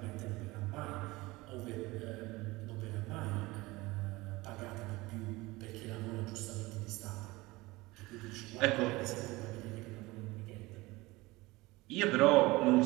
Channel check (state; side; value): quieter; left; 21.2 dB